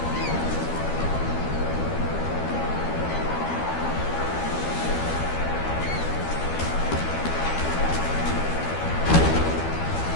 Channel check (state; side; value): late; right; 12 ms